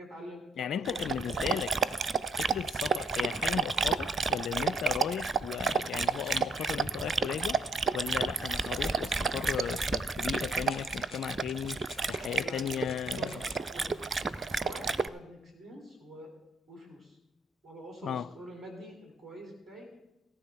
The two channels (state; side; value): normal; both; correlation 0.67